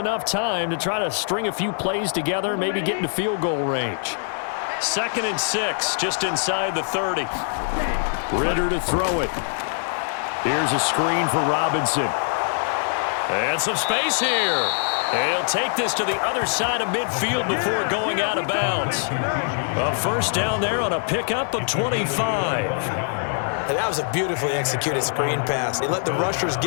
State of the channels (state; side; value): silent; right; 63 dB below the other